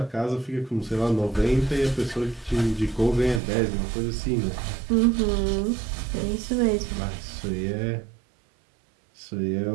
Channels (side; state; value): left; drops out; at 3.4 s